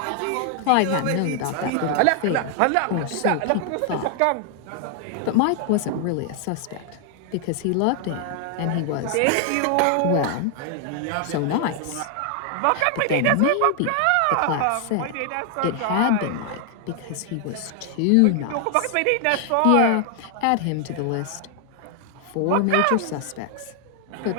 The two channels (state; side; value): different; both; correlation 0.00